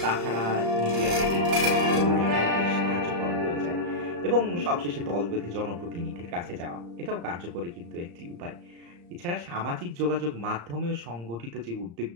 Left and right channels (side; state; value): left; late; 35 ms